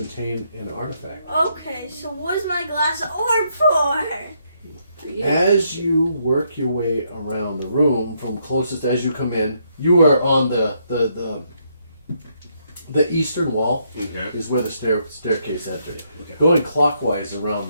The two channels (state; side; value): inverted; both; correlation -0.74